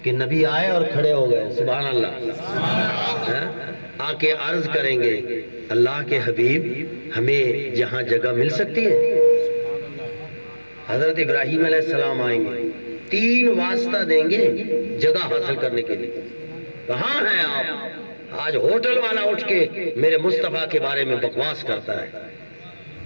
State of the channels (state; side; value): inverted; both; correlation -1.00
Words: کہ نبی آئے اور کھڑے ہو گئے، سبحان اللہ. آ کے عرض کریں گے اللہ کے حبیب ہمیں جہاں جگہ مل سکتی ہے. حضرت ابراہیم علیہ السلام آئیں گے، 3 واسطہ دیں گے جگہ حاصل کرنے کے لیے. کہاں ہیں آپ؟ آج ہوٹل والا اٹھ کے میرے مصطفیٰ کے بارے میں بکواس کرتا ہے.